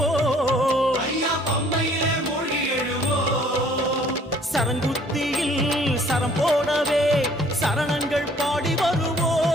ஐயா பம்பையிலே மூழ்கி எழுவோம். சரங்குத்தியில் சரம் போடவே சரணங்கள் பாடி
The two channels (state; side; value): normal; both; correlation 0.58